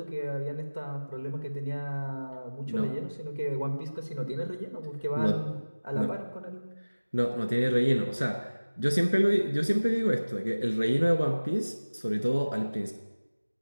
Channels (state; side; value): inverted; both; correlation -1.00